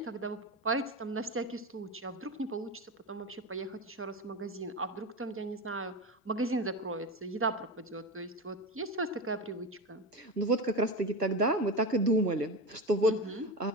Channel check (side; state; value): both; normal; correlation 0.23